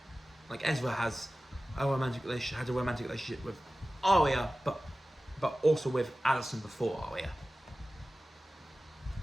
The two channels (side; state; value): both; normal; correlation 0.96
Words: Like Ezra has a romantic relationship with Aria, but also with Alison before Aria.